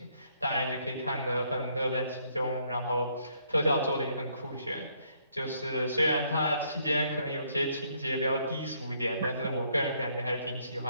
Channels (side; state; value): both; inverted; correlation -0.69